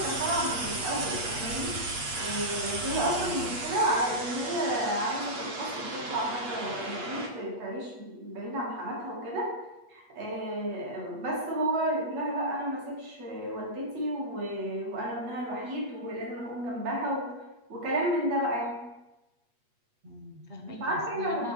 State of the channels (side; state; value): left; late; 8.3 ms